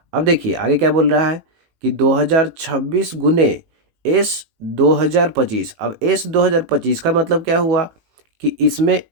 अब देखिए आगे क्या बोल रहा है कि 2026 गुने S 2025। अब S 2025 का मतलब क्या हुआ कि इसमें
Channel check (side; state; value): left; late; 18 ms